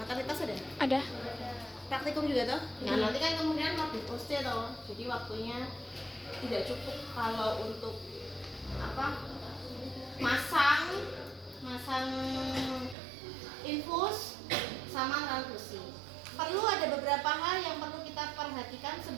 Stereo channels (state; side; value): drops out; left; at 13.0 s